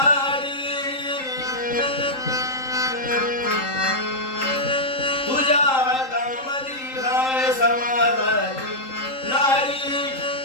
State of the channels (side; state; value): right; late; 3.8 ms